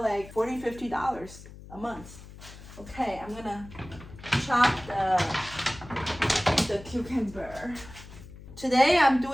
like $40, $50 a month. Okay, I'm gonna chop the cucumber. Today I'm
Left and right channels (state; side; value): noise; left; hum, 17 dB below the sound